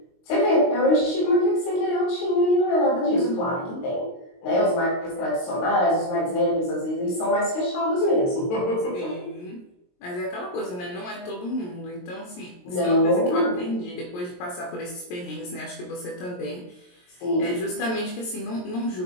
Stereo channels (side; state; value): right; late; 22 ms